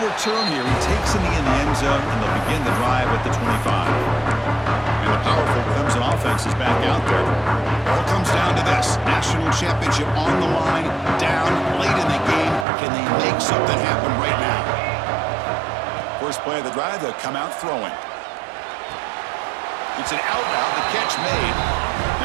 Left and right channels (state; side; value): drops out; left; at 12.7 s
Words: return here. He takes it in the end zone, and they'll begin the drive at the 25. And the powerful Clemson offense is back out there. It all comes down to this. National championship on the line, down late in the game. Can they make something happen right now? First play of the drive, they'll come out throwing. It's an out route, the catch made.